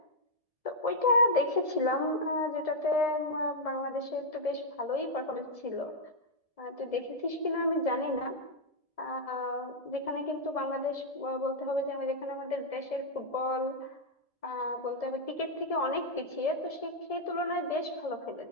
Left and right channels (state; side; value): late; right; 1.7 ms